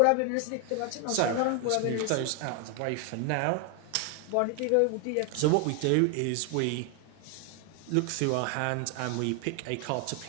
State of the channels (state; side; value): different; both; correlation 0.01